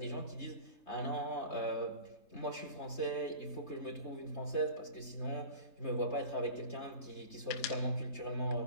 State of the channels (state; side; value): late; right; 3.3 ms